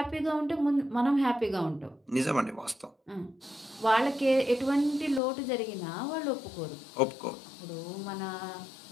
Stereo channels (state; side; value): drops out; right; at 5.2 s